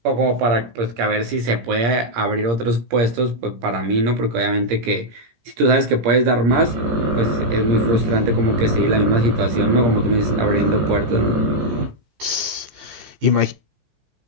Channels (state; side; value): late; left; 17 ms